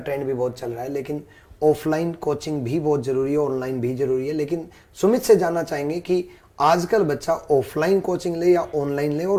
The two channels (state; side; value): identical; both; correlation 1.00